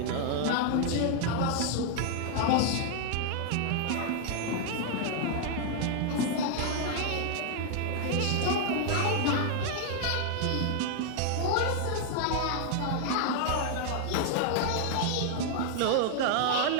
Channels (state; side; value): different; both; correlation 0.00